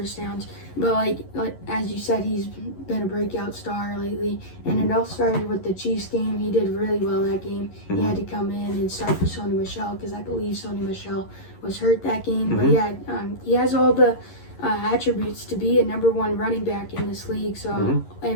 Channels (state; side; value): late; right; 11 ms